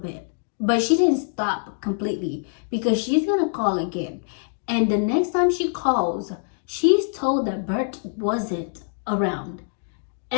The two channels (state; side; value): silent; right; digital silence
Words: But she didn't stop completely because she's going to call again. And the next time she calls, she's told that Bert wasn't around.